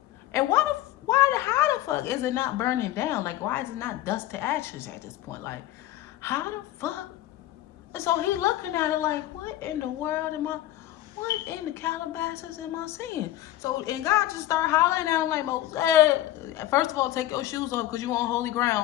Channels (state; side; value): quieter; right; 14.3 dB